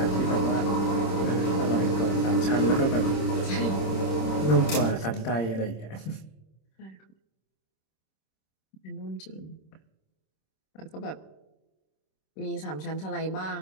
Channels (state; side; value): late; right; 26 ms